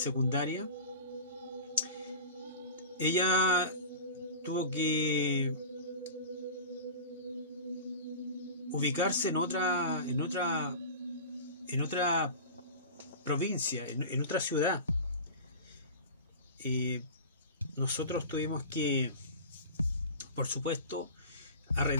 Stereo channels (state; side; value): inverted; both; correlation -0.34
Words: Ella tuvo que ubicarse en otra provincia, en otra ciudad. Nosotros tuvimos que, por supuesto,